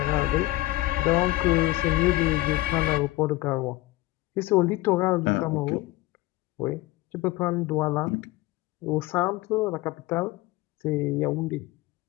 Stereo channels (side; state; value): right; quieter; 18.6 dB